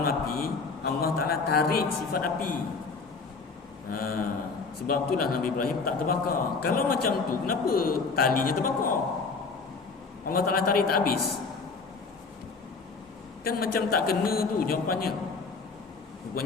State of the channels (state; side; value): quieter; right; 4.5 dB